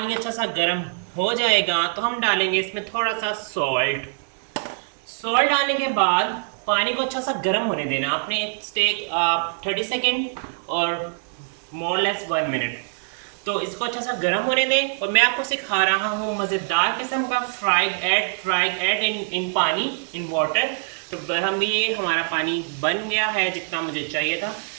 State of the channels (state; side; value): silent; left; 63 dB below the other